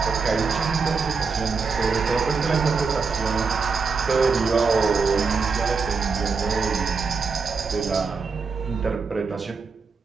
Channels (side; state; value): left; quieter; 4.9 dB